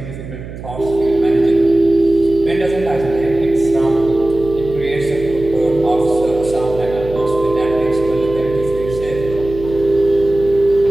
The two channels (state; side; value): noise; right; hum, 12 dB below the sound